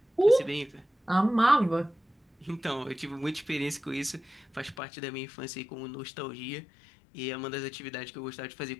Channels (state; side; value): drops out; right; at 4.8 s